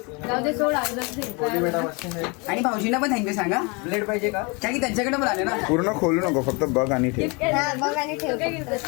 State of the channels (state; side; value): quieter; right; 29.9 dB